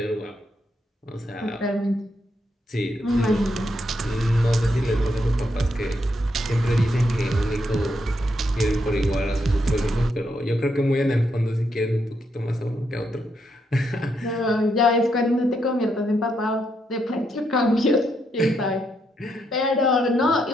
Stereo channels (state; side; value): normal; both; correlation 0.79